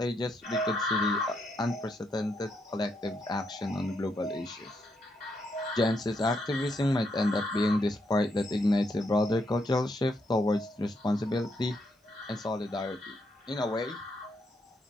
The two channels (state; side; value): normal; both; correlation 0.78